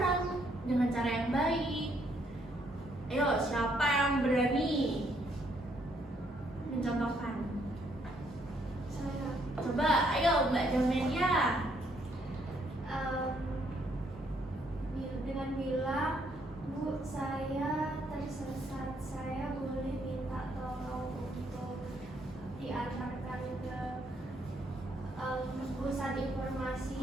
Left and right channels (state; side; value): normal; both; correlation 0.71